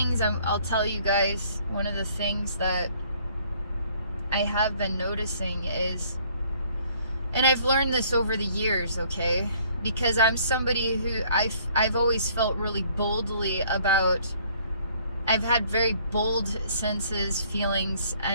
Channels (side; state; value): both; inverted; correlation -0.60